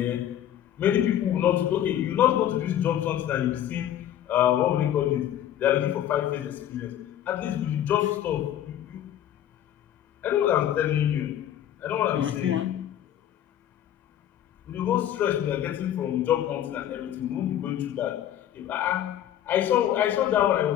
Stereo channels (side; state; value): right; quieter; 11.2 dB